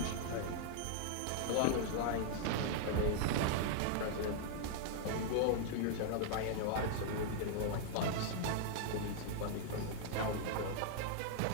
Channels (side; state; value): both; different; correlation -0.01